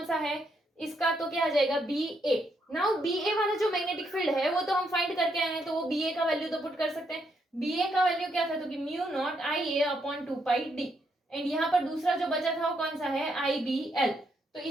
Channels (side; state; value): both; normal; correlation 0.77